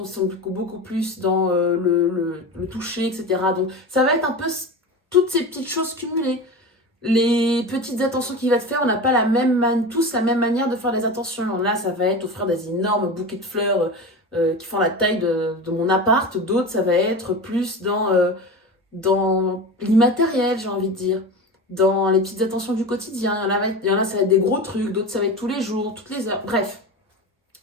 qui sont beaucoup plus dans le toucher, etc. Donc ça va être un peu toutes ces petites choses cumulées. Les petites attentions qu'il va te faire, on n'a pas tous la même manière de faire les attentions. Là, ça va être offrir des énormes bouquets de fleurs qui font la taille de mon appart. D'autres, ça va être plus dans l'immatériel, j'ai envie de dire. Dans les petites attentions du quotidien. Il y en a, ça va être des gros trucs. D'autres, ça va être tous les jours, toutes les heures. Bref.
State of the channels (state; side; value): normal; both; correlation 0.28